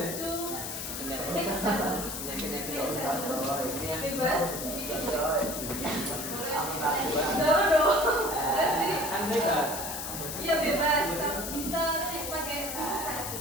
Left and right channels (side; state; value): left; noise; hiss, 6 dB below the sound